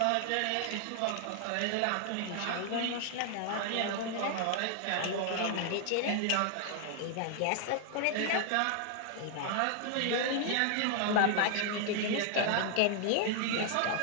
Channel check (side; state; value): both; different; correlation 0.00